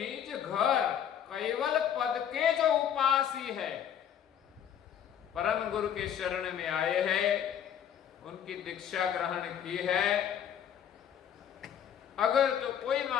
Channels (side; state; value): right; quieter; 9.2 dB